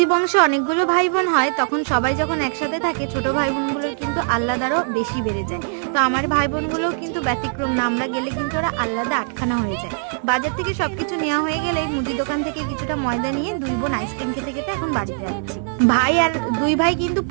বংশে অনেকগুলো ভাই বোন হয় তখন সবাই যখন একসাথে থাকে ছোট ভাই বোনগুলোর কিন্তু আহ্লাদ বেশি বেড়ে যায়। তো আমার ভাই বোনগুলোও কিন্তু ব্যতিক্রম না, আমরা গেলে কিন্তু ওরা আহ্লাদে আটখানা হয়ে যায়। বাজার থেকে সবকিছু নেওয়া হয়ে গেলেই মুদি দোকান থেকে কিছুটা ময়দা নিয়ে দুই বোন আইসক্রিম খেতে খেতে এখন বাড়িতে যাচ্ছি। ভাই আর দুই ভাই কিন্তু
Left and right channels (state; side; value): silent; left; digital silence